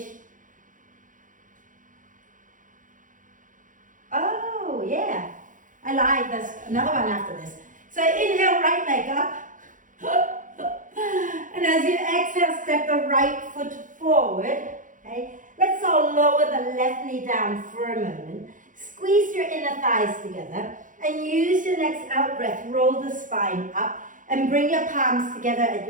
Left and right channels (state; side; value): late; left; 0.38 ms